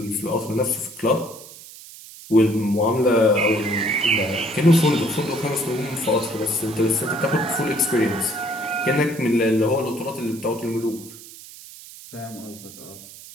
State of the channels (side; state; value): right; noise; hiss, 17 dB below the sound